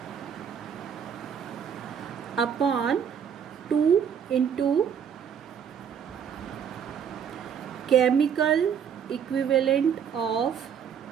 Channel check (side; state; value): left; quieter; 7.9 dB